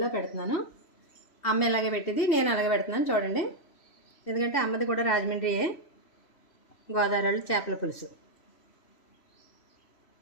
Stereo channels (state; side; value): late; right; 3.0 ms